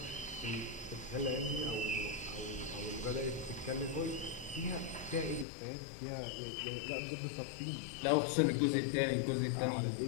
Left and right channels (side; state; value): right; drops out; at 5.5 s